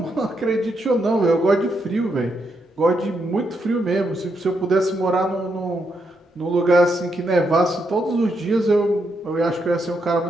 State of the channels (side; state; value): both; normal; correlation 0.80